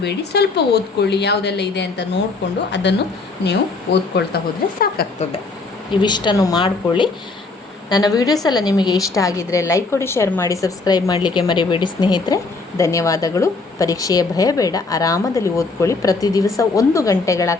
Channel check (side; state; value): right; quieter; 3.8 dB